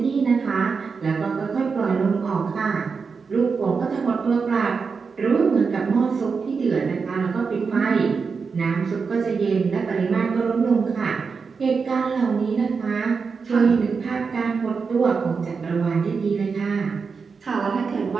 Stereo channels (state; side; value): quieter; left; 5.2 dB